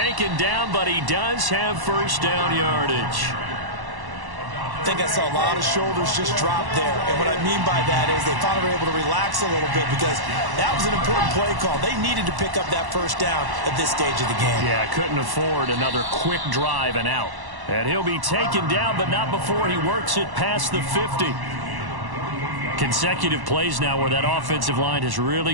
down, but he does have first down yardage. I think I saw a lot of shoulders just drop there. And what I mean by that is they finally were able to relax a little bit because that was an important play call. They needed to pick up that first down at this stage of the game. Yeah, couldn't afford another quick drive and out. And he'll be taken down, but not before he works it past the 50. Consecutive plays now where that offensive line has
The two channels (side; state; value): left; late; 1.1 ms